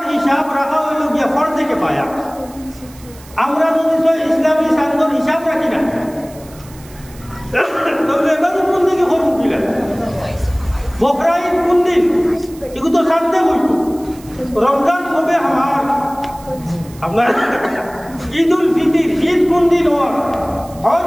হিসাব রাখা হইল গিয়া ফরজে কিফায়া। আমরা যদি ইসলামী চান্দর হিসাব রাখি না তাহলে এবারে কোন দিকে করুন কিলা বকরা ঈদ কোন দিন এগুলো তো জানতে হইতো। রমজান হবে আমার আপনার ঈদ উল ফিতর ঈদ কোন দিন হজ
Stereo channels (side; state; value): right; noise; hiss, 22 dB below the sound